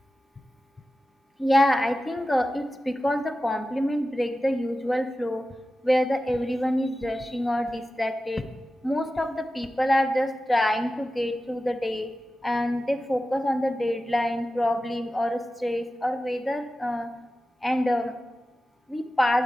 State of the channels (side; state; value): both; normal; correlation 0.94